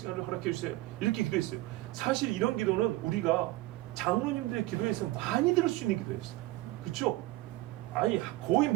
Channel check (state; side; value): quieter; left; 18.5 dB